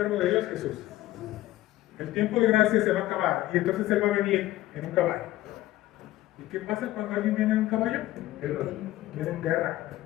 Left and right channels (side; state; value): right; quieter; 15.8 dB